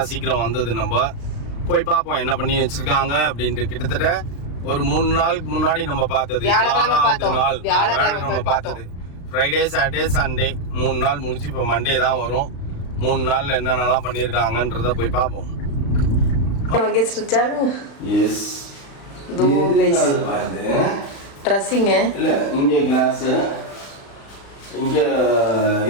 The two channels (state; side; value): late; right; 36 ms